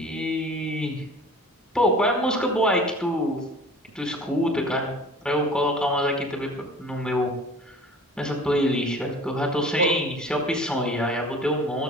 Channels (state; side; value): normal; both; correlation 0.44